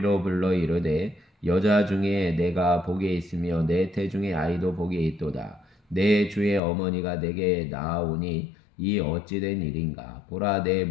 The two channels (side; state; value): right; drops out; at 6.6 s